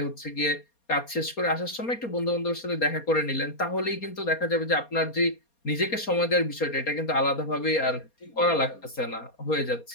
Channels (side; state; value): right; late; 4.2 ms